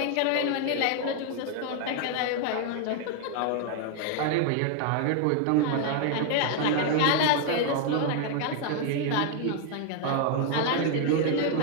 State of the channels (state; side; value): different; both; correlation 0.00